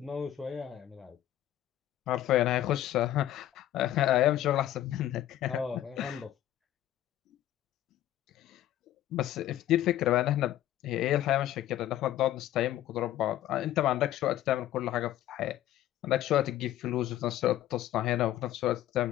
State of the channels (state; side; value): quieter; right; 13.0 dB